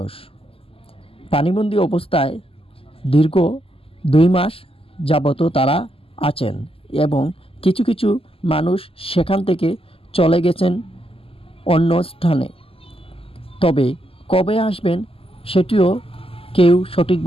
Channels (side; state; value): right; late; 0.27 ms